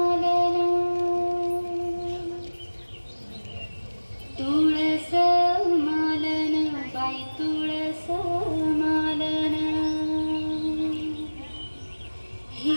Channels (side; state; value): both; inverted; correlation -1.00